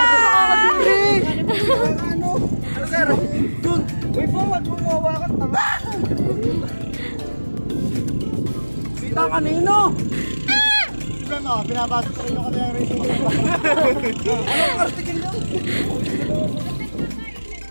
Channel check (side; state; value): both; inverted; correlation -1.00